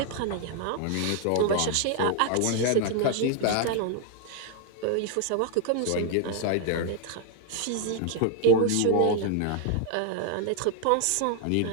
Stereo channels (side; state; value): both; different; correlation 0.00